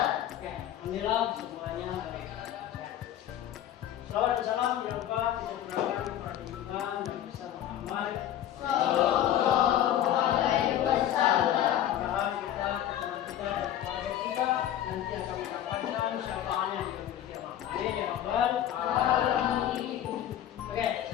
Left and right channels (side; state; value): right; quieter; 11.5 dB